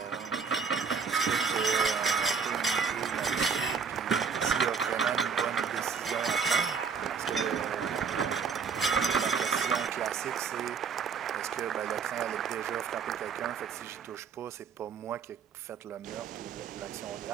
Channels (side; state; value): left; quieter; 6.0 dB